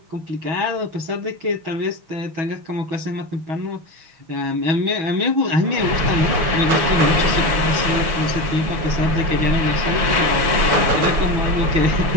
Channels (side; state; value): left; late; 6.0 ms